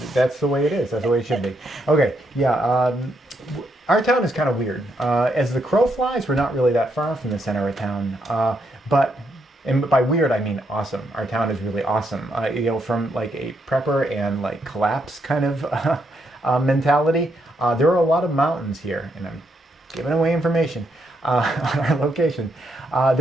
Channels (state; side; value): normal; both; correlation 0.78